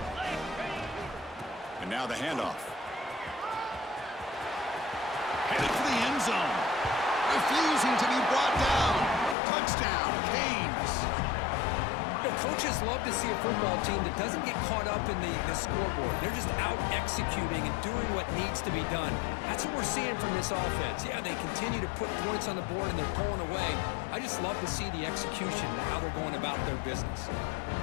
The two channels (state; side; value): drops out; right; at 9.3 s